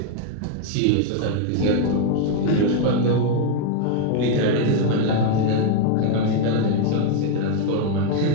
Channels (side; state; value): both; different; correlation 0.00